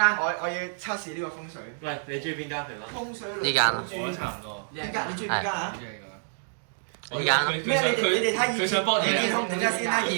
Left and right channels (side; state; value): left; silent; digital silence